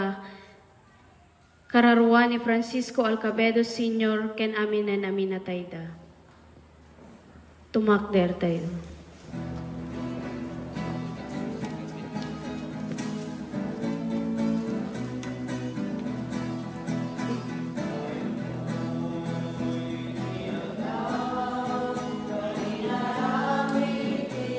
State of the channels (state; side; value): identical; both; correlation 1.00